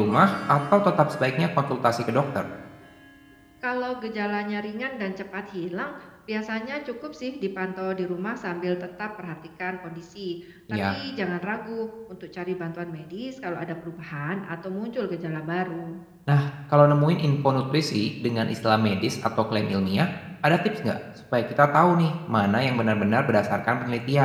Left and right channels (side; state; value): both; identical; correlation 1.00